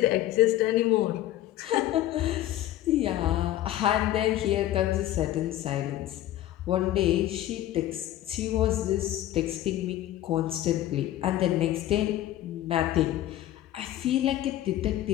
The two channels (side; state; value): right; quieter; 13.6 dB